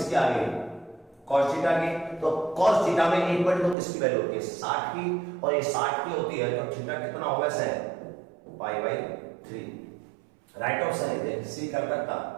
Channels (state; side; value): drops out; left; at 3.8 s